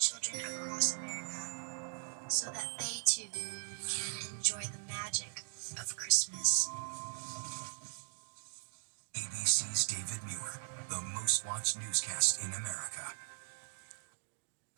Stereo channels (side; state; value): left; silent; digital silence